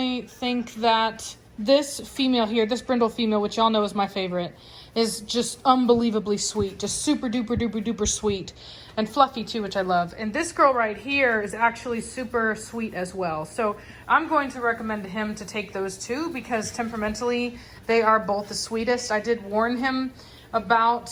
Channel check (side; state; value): both; identical; correlation 1.00